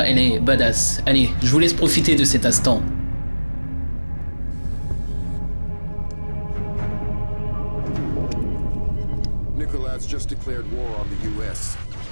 elle est badass. Allez, je vous laisse profiter de cet instant. Nicholas just declared war on the U.S.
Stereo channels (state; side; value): inverted; both; correlation -1.00